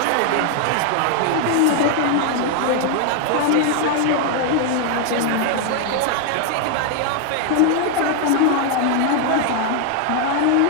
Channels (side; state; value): both; different; correlation 0.00